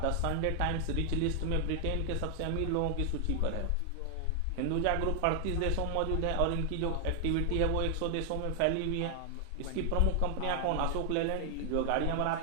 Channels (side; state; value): both; different; correlation 0.00